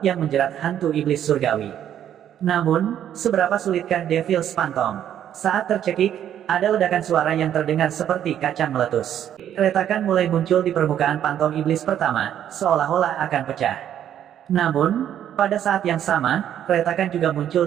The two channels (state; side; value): quieter; left; 10.3 dB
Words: yang menjerat hantu iblis surgawi. Namun, seberapa sulitkah Devil's Phantom? Saat tercekik, ada ledakan suara yang terdengar seperti kacang meletus. Retakan mulai muncul di permukaan pantom iblis pertama, seolah-olah akan pecah. Namun, pada saat yang sama, retakan juga muncul